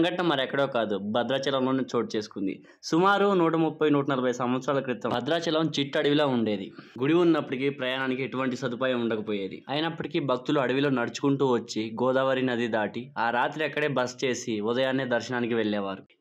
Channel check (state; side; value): identical; both; correlation 1.00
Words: మరెక్కడో కాదు, భద్రాచలంలోనే చోటు చేసుకుంది. సుమారు 130-140 సంవత్సరాల క్రితం భద్రాచలం చిట్టడవిలో ఉండేది. గుడి ఉన్నప్పటికీ ప్రయాణానికి ఎటువంటి సదుపాయం ఉండకపోయేది. అయినప్పటికీ భక్తులు అడవిలో నడుచుకుంటూ వచ్చి గోదావరి నది దాటి ఆ రాత్రి అక్కడే బస చేసి ఉదయాన్నే దర్శనానికి వెళ్లేవారు.